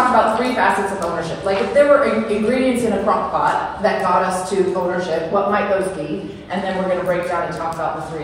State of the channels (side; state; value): both; identical; correlation 1.00